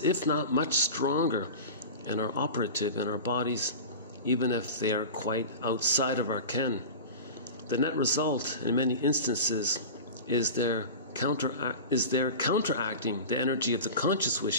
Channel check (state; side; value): inverted; both; correlation -0.31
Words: if not much stronger, and are operative in our bodies, even if they are quite outside of our ken. The net result, in many instances, is their counteracting the energy of the conscious